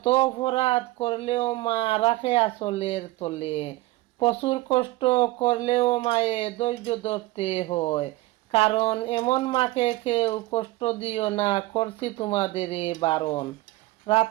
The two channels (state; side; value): quieter; left; 19.0 dB